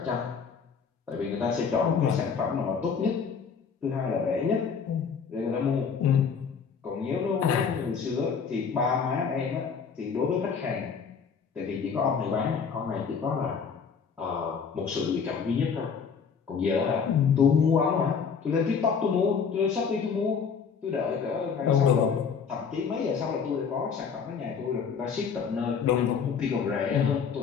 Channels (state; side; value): quieter; right; 6.2 dB